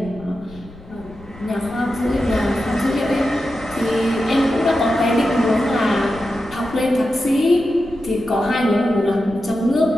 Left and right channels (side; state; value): left; noise; rumble, 20 dB below the sound